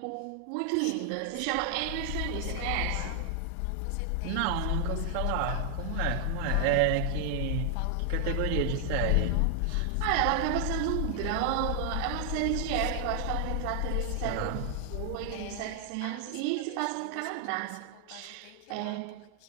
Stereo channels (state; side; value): different; both; correlation 0.00